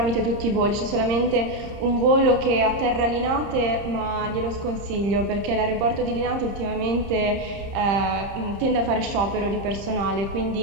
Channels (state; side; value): late; left; 30 ms